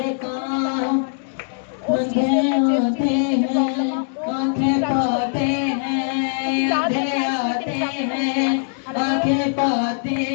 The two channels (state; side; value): silent; right; digital silence